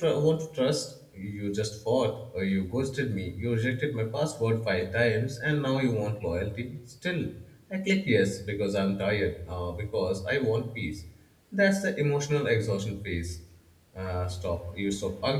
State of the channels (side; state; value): both; identical; correlation 1.00